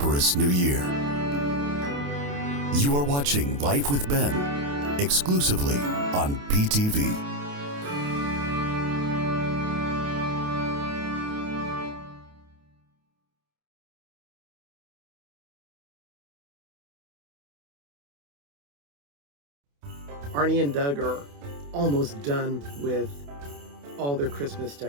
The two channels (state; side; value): late; left; 28 ms